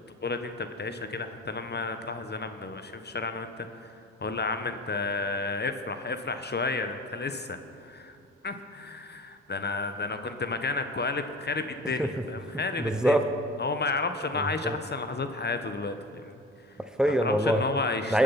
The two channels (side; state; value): both; normal; correlation 0.38